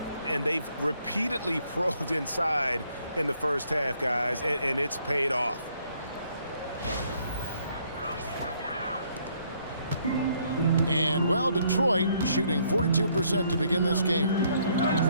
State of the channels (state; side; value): inverted; both; correlation -0.67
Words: And they've repeatedly probed inside in the first half, guys, and it's paid off. And, well, Detroit shooting 42% to begin this game.